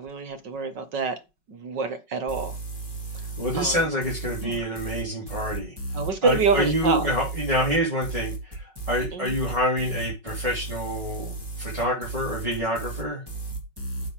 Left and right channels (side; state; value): left; late; 5.3 ms